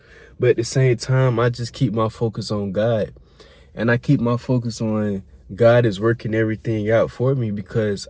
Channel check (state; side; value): identical; both; correlation 1.00